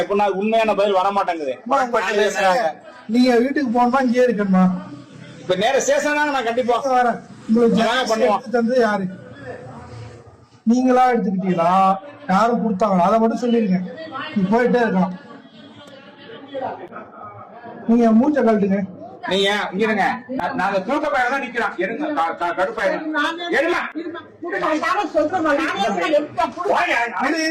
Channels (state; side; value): identical; both; correlation 1.00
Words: எப்படின்னா உண்மையான பதில் வர மாட்டேங்குது. நீங்க வீட்டுக்கு போனா இங்கே இருக்கணுமா? இப்ப நேர ஸ்டேஷன் தாங்க, நான் கண்டிப்பா வரேன். உங்களுக்கு யாரு? நீங்களா எடுத்துக்கிட்டீங்களா? யாரும் கொடுத்தாங்களா? அதை மட்டும் சொல்லிருங்க. நீ போயிட்டே இருக்கலாம். நீங்க மூச்சை கழட்டுங்க. நீங்க இங்க இருங்க, நாங்க தூக்க பயிர தான் நிக்கிறோம். எடுங்க கடுப்பாயிருங்க. எடுங்க